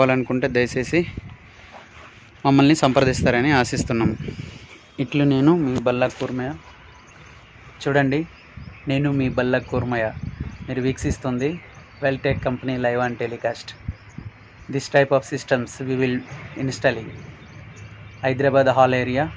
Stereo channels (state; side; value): identical; both; correlation 1.00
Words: దయచేసి మమ్మల్ని సంప్రదిస్తారని ఆశిస్తున్నాము. ఇట్లు నేను మీ బల్లకూర్మయ్య. చూడండి, నేను మీ బల్లకూర్మయ్య. మీరు వీక్షిస్తుంది Veltech company live and telecast. This type of systems we will installing Hyderabad hall area.